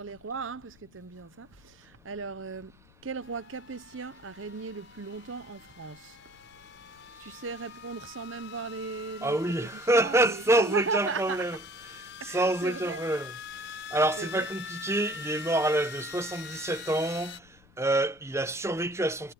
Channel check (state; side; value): noise; left; rumble, 28 dB below the sound